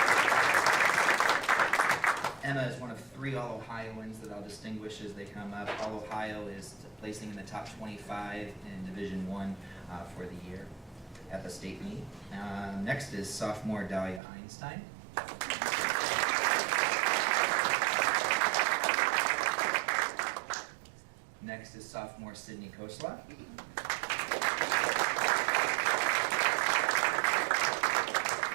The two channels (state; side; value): drops out; left; at 14.2 s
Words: Emma is one of 3 All-Ohioans that I'll distinguish as they come up. All-Ohio is placing in the top 25 in Division I for the year at the state meet. Next is sophomore Dahlia Einstein. Next is sophomore Sydney Kosla.